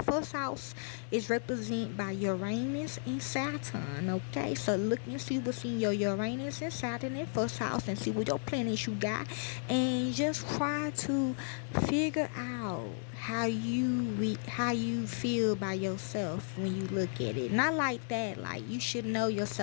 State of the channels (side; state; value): right; silent; digital silence